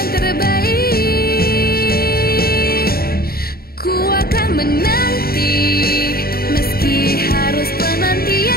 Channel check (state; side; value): late; right; 0.44 ms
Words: terbaik. Ku akan menanti, meski harus